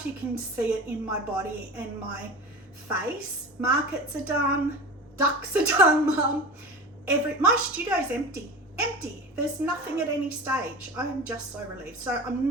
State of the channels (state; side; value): normal; both; correlation 0.31